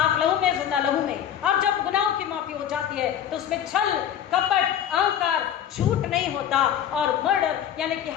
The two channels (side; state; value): right; quieter; 9.9 dB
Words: लहू में, जिंदा लहू में। और जब गुनाहों की माफी हो जाती है तो उसमें छल, कपट, अहंकार, झूठ नहीं होता और मर्डर यानी कि